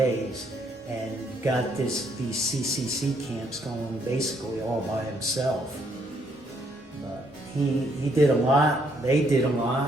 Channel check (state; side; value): normal; both; correlation 0.70